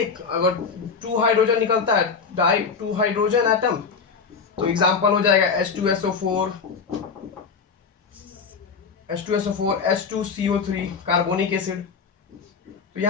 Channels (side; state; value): right; quieter; 5.5 dB